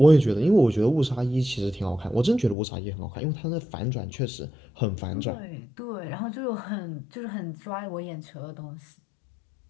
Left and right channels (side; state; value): right; drops out; at 2.6 s